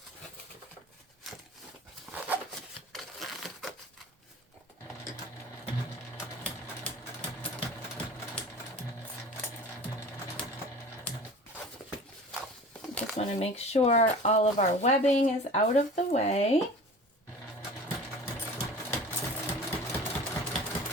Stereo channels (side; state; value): both; normal; correlation 0.40